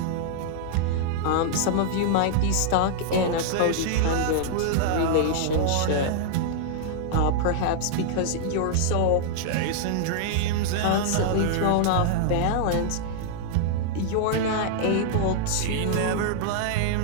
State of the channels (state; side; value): different; both; correlation -0.01